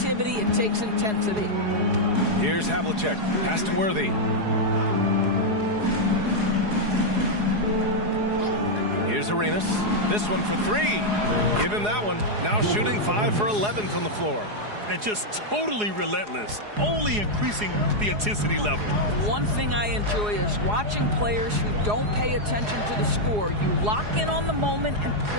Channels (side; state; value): left; late; 4.8 ms